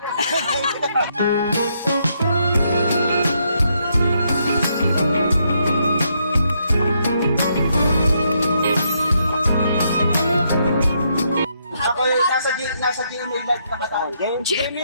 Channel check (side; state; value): both; inverted; correlation -0.76